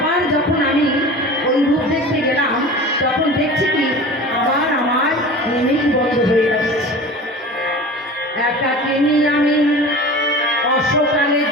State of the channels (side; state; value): both; normal; correlation 0.36